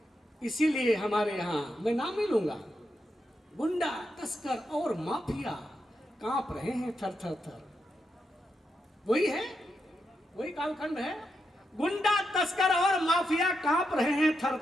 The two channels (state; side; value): normal; both; correlation 0.84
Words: इसीलिए हमारे यहाँ मैं नाम नहीं लूंगा, गुंडा तस्कर और माफिया कांप रहे हैं थर थर थर। वही है, वही कालखंड है। गुंडा तस्कर और माफिया कांप रहे हैं थर